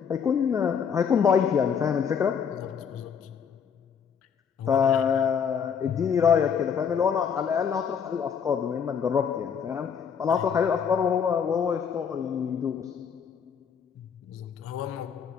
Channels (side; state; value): right; quieter; 7.1 dB